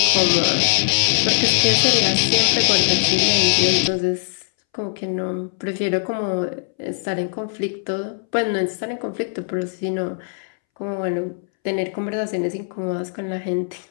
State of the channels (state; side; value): silent; right; 64 dB below the other